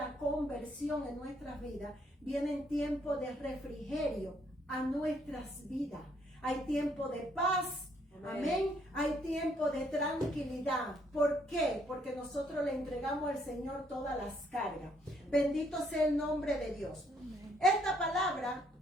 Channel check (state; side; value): normal; both; correlation 0.69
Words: conversión en nuestras vidas, vienen tiempos de refrigerio a nuestras vidas. Hay tiempo de paz. Amén. Hay tiempo de tranquilidad. ¿Por qué? Porque nosotros le entregamos al Señor todas las cargas. Bendito sea el nombre de Dios. Amén. Esta palabra,